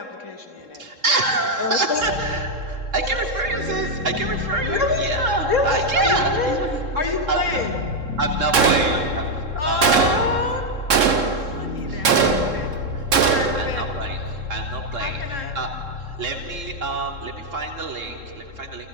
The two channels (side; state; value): left; late; 3.7 ms